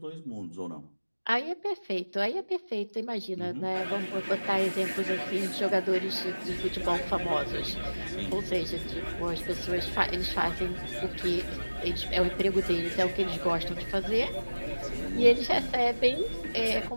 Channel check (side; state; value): both; inverted; correlation -1.00